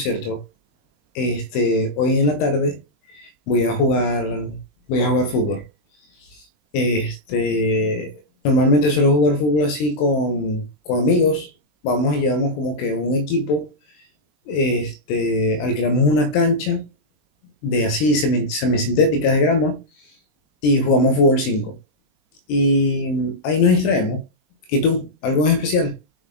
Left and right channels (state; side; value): late; right; 20 ms